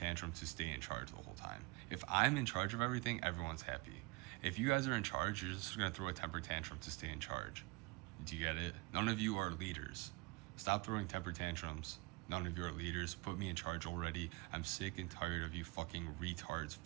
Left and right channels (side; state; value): left; quieter; 25.8 dB